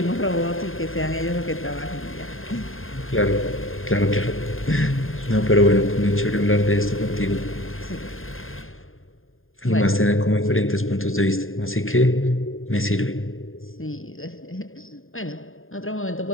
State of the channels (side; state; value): right; late; 0.60 ms